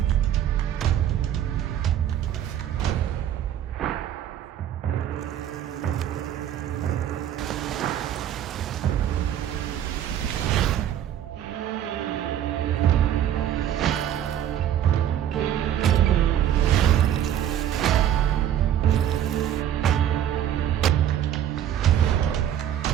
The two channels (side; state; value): left; quieter; 10.5 dB